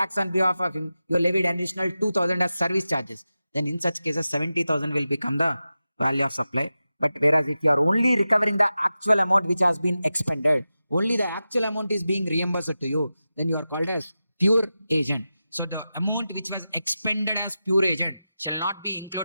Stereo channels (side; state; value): both; inverted; correlation -0.93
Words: on behalf of him, you levied additional 2,000 as service charges. Then in such cases, 70,000 will become the value of supply. But whereas if you are only recovering the actual amount which has been expended, only the actual amount is being reimbursed to you, then you are called as pure agent. So the amount which was expended as pure agent shall not be